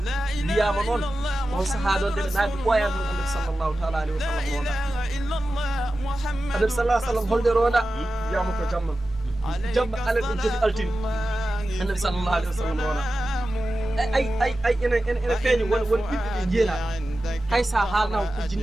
wiyama noon on saaha ɗon nde ɓe naadi ɓoyan tan annabi sallllahu taala alayhi wa sallam ronda annabi sallah sallam holde ronda wiyama ko jamma alal en jogi altini annabi sallallahu alayhi wa sallam ronda ay ene feeñi won ɓiɓɓe ɓe jeera hay sa haalna ko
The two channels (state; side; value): normal; both; correlation 0.94